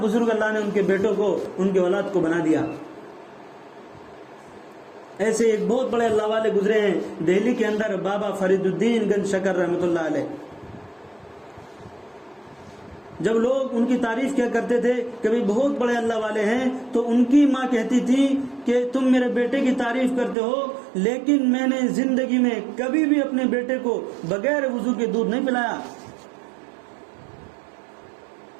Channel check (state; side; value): drops out; left; at 20.4 s